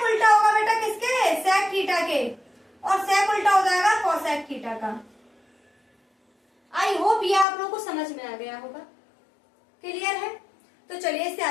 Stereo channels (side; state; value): right; drops out; at 7.5 s